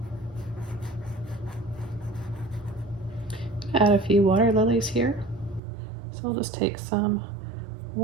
Add a few water lilies here. So we'll just take some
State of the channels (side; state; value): left; drops out; at 5.6 s